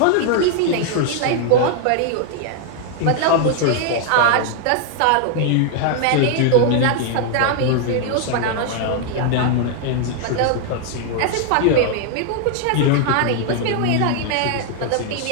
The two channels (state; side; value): different; both; correlation 0.00